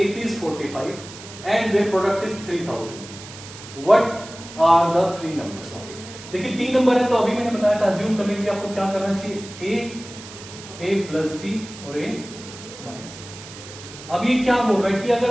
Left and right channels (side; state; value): right; noise; hiss, 15 dB below the sound